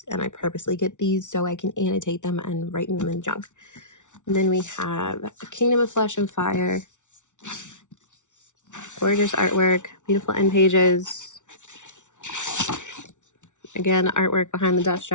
and I purposely get these so I can annotate them and write them in junk. And then we have A Kingdom of Flesh and Fire. Gorgeous artwork, beautiful end pages. Again, artwork behind the dust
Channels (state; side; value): late; right; 0.86 ms